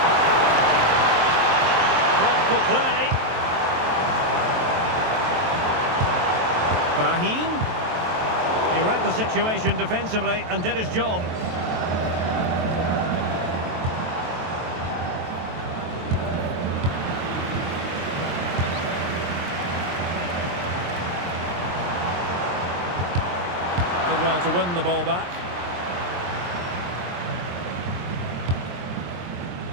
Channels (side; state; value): left; late; 23 ms